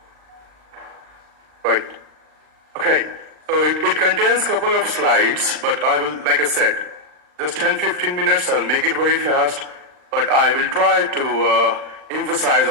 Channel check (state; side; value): late; left; 39 ms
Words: Right. Okay. So it contains a couple of slides, but I will, like I said, just 10-15 minutes. I'll make it very fast, but I will try to emphasize